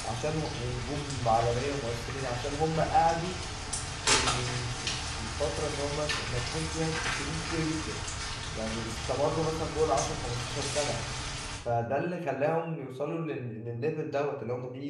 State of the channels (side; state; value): both; identical; correlation 1.00